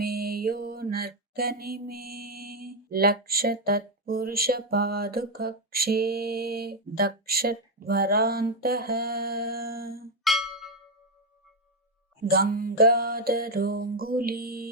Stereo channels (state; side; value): normal; both; correlation 0.05